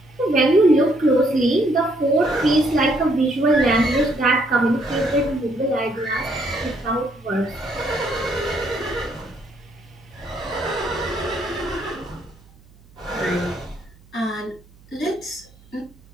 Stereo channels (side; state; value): right; noise; hum, 27 dB below the sound